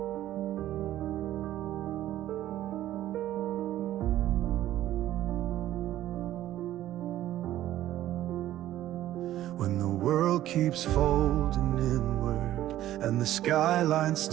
world keeps folding inward, and the skyline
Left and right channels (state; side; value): quieter; left; 13.5 dB